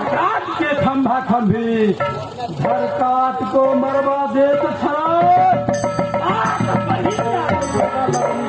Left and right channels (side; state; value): both; identical; correlation 1.00